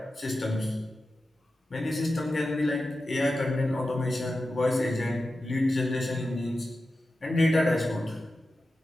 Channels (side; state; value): both; normal; correlation 0.92